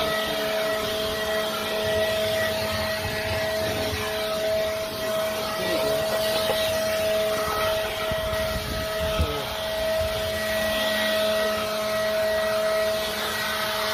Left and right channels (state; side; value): identical; both; correlation 1.00